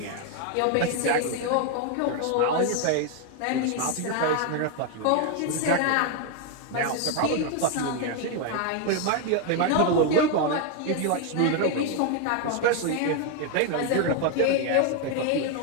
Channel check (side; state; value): both; different; correlation 0.01